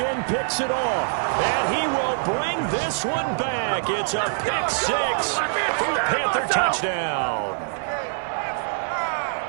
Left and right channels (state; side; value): silent; left; 56 dB below the other